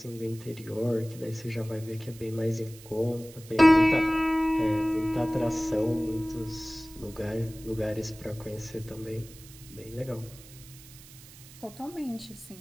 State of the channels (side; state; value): right; noise; hiss, 20 dB below the sound